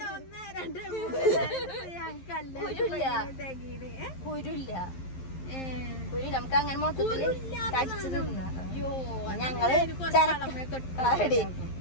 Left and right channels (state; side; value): late; right; 11 ms